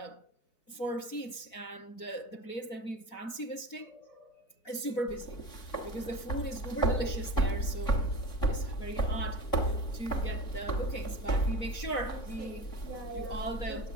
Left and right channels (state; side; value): late; right; 4.1 ms